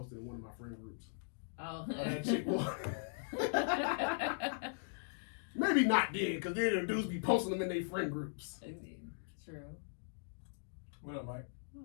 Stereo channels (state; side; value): silent; right; digital silence